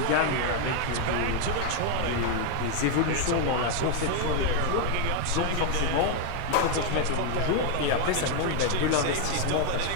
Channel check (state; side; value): different; both; correlation 0.01